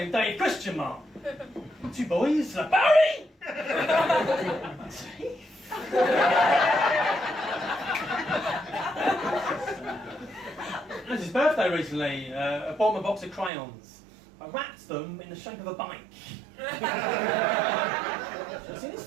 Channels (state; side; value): drops out; left; at 13.5 s